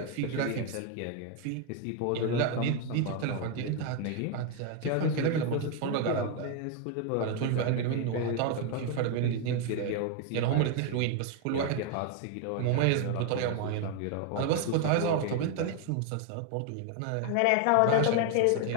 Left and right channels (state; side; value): different; both; correlation 0.01